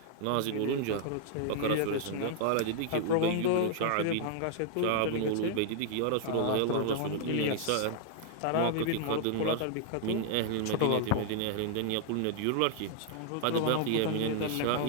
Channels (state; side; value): different; both; correlation 0.00